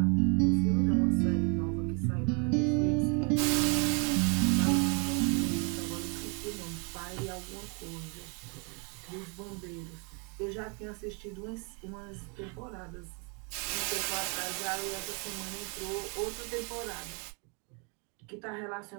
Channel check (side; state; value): left; quieter; 35.2 dB